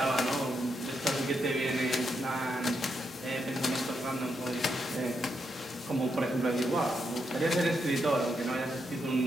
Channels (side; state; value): both; normal; correlation 0.82